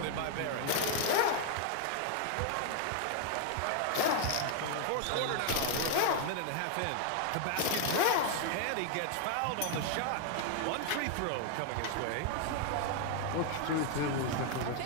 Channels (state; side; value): different; both; correlation 0.00